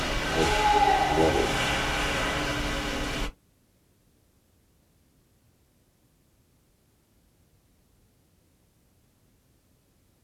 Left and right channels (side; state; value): both; identical; correlation 1.00